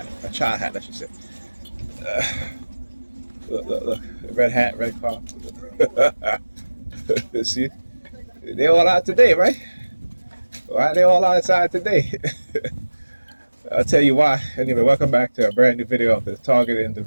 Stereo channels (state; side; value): inverted; both; correlation -1.00